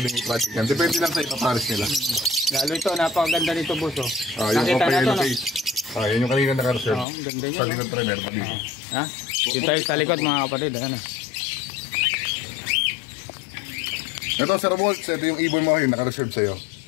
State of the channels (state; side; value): drops out; right; at 7.1 s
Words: i-project yan. Depende lang sa ipapares nila. Lalo ito, napakaganda nito, boss, oh. Yung Nakita opa na to, yellow no? face. Yan yung kanina naka-reserve. Oo, ang ganda niya, Sa no? likod trainer. Ha? Dito tayo sa likod, mga kapatid, ayan, oh. Ito, Sir Waltz, ito yung ibon mo yung naka-reserve sa'yo.